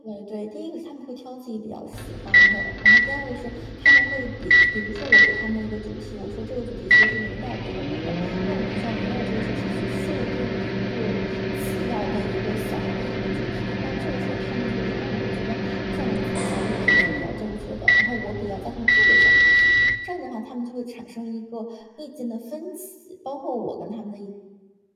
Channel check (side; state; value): both; identical; correlation 1.00